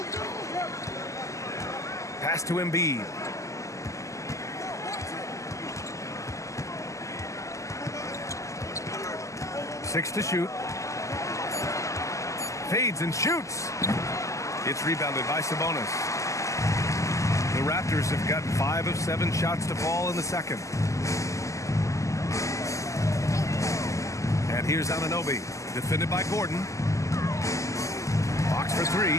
Pass to Embiid. Six to shoot. Fades and shoots. It's rebounded by Sabonis. The Raptors have gotten 5 of 7 shots to fall in the second. And here's Anunoby, defended by Gordon. Box for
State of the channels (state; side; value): late; right; 0.16 ms